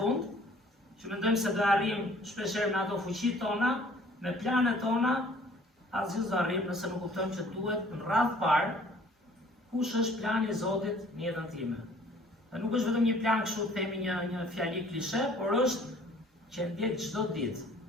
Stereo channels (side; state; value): both; normal; correlation 0.54